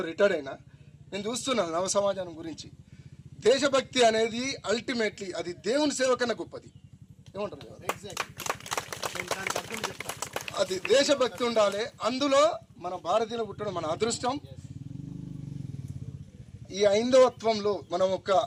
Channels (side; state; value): both; identical; correlation 1.00